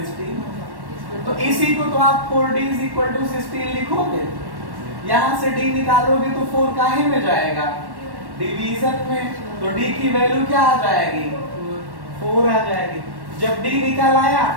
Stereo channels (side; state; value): left; late; 1.1 ms